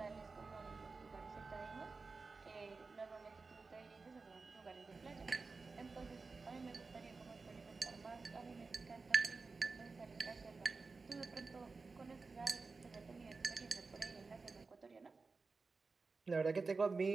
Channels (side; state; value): left; quieter; 4.2 dB